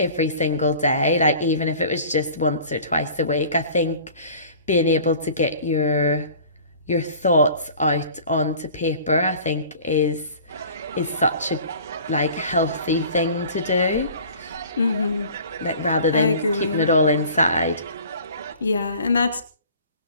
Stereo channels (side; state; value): both; inverted; correlation -0.46